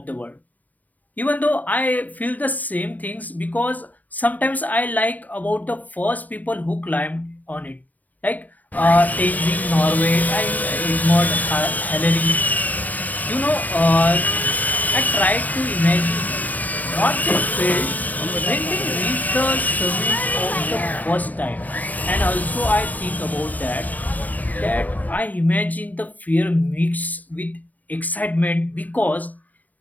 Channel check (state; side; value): late; right; 0.078 ms